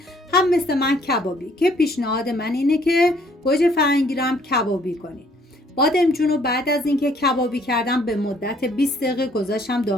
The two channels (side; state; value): both; normal; correlation 0.62